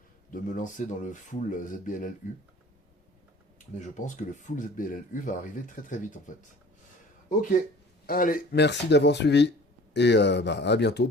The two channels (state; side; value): normal; both; correlation 0.46